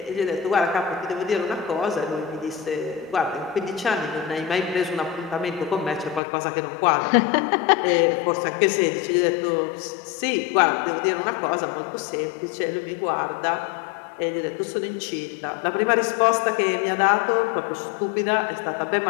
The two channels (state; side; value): drops out; right; at 6.2 s